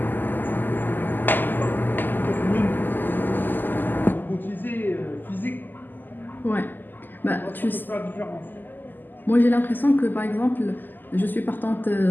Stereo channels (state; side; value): late; right; 0.089 ms